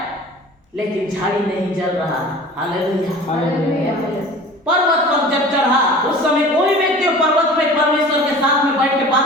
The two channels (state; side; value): normal; both; correlation 0.41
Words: लेकिन झाड़ी नहीं जल रहा, हालेलुया। पर्वत पर जब चढ़ा उस समय कोई व्यक्ति पर्वत पे परमेश्वर के साथ में बैठ के